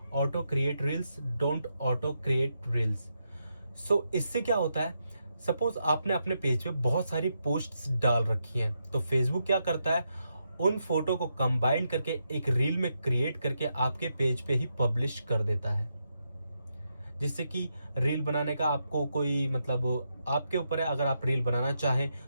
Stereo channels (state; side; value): inverted; both; correlation -0.82